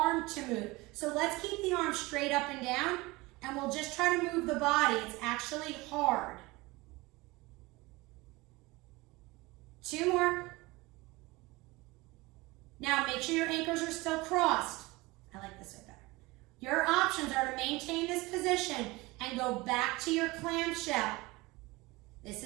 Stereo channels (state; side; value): quieter; left; 22.2 dB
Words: to move. So let's keep the arm straight up and down, and we'll just try to move the body. It's actually hard. 2 more. Now make sure your ankles are still crossed. I like this way better. Your options are to maintain this position and go back to your clamshell. This